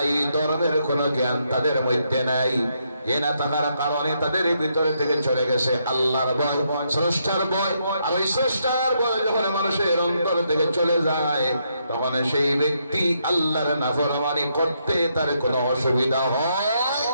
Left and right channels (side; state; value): both; inverted; correlation -0.77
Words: ধর্মের কোনো জ্ঞান তাদের মধ্যে নাই। এ না থাকার কারণে তাদের ভিতরে থেকে চলে গেছে আল্লাহর ভয়, স্রষ্টার ভয়। আর ওই স্রষ্টার ভয় যখন মানুষের অন্তর থেকে চলে যায়, তখন সেই ব্যক্তি আল্লাহর নাফরমানি করতে তার কোনো অসুবিধা হয়